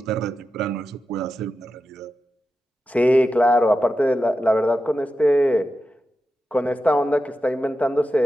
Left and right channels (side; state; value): both; normal; correlation 0.90